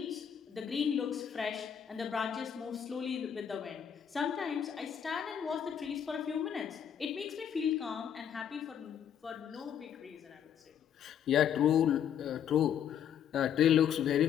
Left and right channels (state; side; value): quieter; right; 8.8 dB